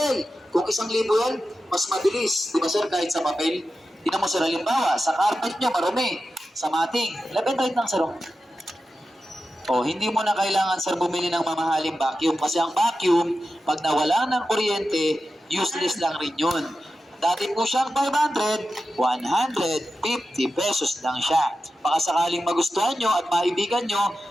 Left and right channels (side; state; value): both; normal; correlation 0.91